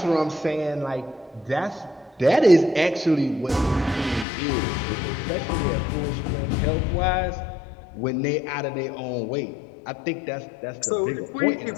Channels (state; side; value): drops out; right; at 4.2 s